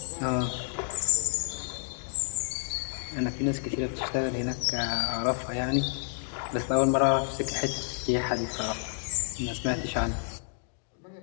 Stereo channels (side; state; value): right; silent; digital silence